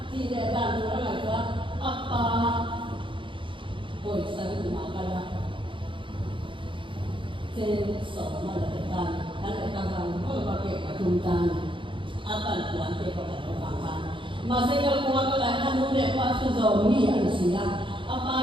tidak ada orang lagi apa, boleh saya makan sensor mana kita, ada orang kalau pakai kacungan, apa tuan kita orang masih kalau orang lain kamu lepas tu zombie ada siang,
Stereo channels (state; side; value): late; left; 0.24 ms